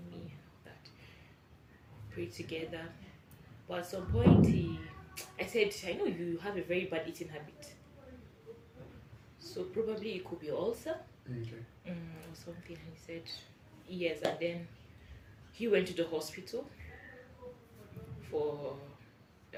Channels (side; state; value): both; identical; correlation 1.00